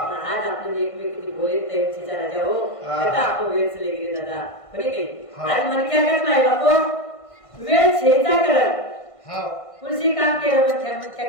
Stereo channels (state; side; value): late; right; 1.5 ms